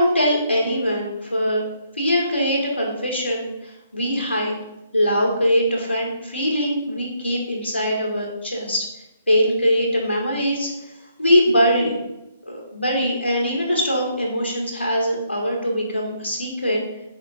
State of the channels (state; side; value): inverted; both; correlation -0.74